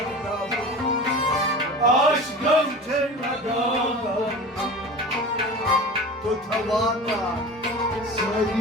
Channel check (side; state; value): both; normal; correlation 0.34